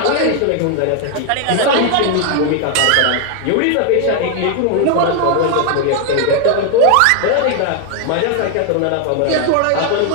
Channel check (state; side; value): different; both; correlation 0.00